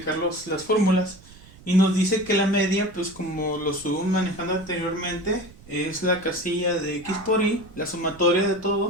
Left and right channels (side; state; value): right; noise; rumble, 22 dB below the sound